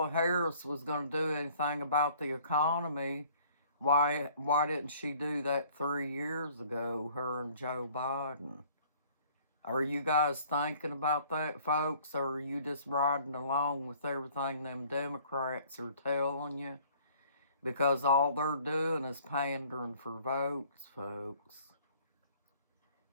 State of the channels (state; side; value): inverted; both; correlation -0.55